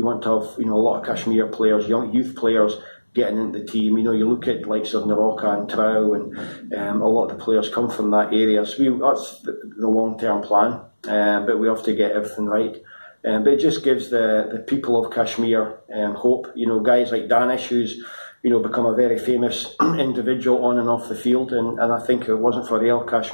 to have, you know, a lot of Kashmir players, young youth players getting into the team. You know, you look at likes of Naroka and Trau, and a lot of the players come from that area. So that's the long-term plan, but we have to get everything right. But it just gives the people of Kashmir hope. You know, guys like Danish, who's, you know, become a very famous individual on and off the field, and I think if it wasn't for Real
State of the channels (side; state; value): both; inverted; correlation -1.00